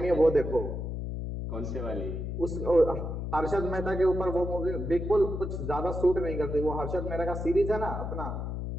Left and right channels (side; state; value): left; noise; hum, 4 dB below the sound